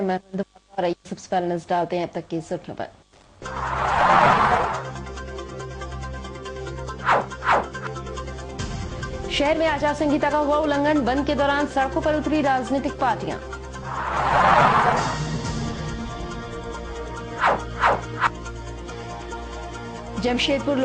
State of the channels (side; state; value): both; identical; correlation 1.00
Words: मैं और सबसे पहले नजर डालते हैं अब तक की सुर्खियों पर। शहर में आचार संहिता का हुआ उल्लंघन, बंद के दौरान सड़कों पर उतरी राजनीतिक पार्टियां। जमशेदपुर